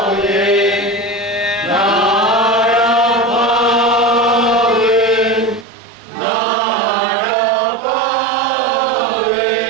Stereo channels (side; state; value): left; drops out; at 5.7 s